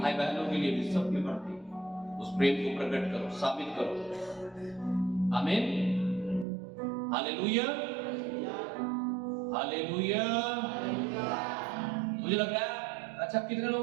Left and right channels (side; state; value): left; drops out; at 6.5 s